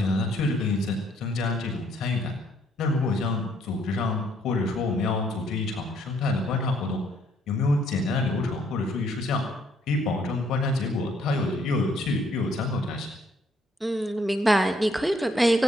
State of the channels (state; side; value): normal; both; correlation 0.67